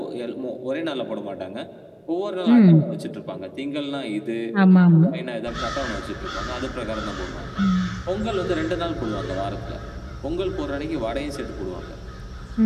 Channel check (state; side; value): identical; both; correlation 1.00